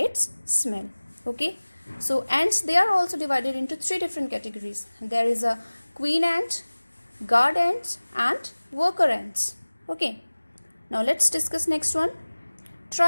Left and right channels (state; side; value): inverted; both; correlation -1.00